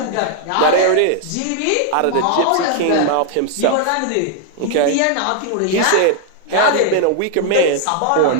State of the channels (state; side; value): different; both; correlation 0.00